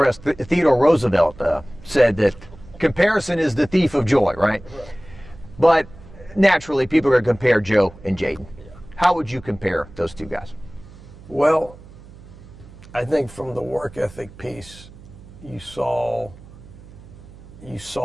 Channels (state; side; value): noise; right; hum, 20 dB below the sound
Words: Theodore Roosevelt said that comparison is the thief of joy, right? But naturally, people are going to compare Joe and Jayden. How would you compare those two guys? Well, I think from the work ethic piece, you saw